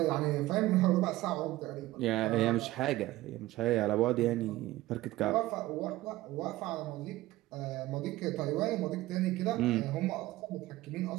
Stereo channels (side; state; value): left; quieter; 17.1 dB